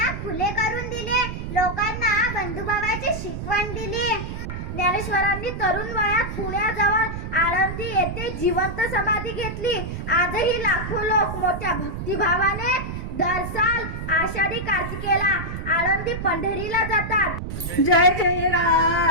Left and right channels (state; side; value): noise; right; rumble, 6 dB below the sound